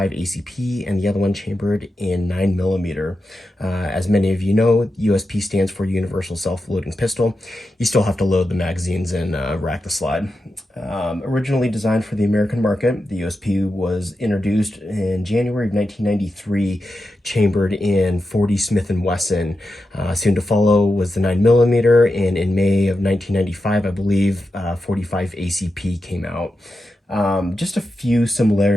ACP and the other one chambered in 9mm. As many of you know, USP stands for Universal Self-Loading Pistol. You still have to load the magazines and rack the slide. Originally designed for the American market, the USP was introduced in January of 1993, chambered in 40 Smith & Wesson. Soon to follow was the 9mm, and in May of 1995, I believe, 45 ACP came out. Just a few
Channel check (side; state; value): both; normal; correlation 0.89